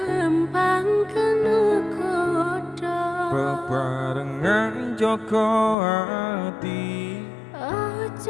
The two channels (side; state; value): right; drops out; at 5.8 s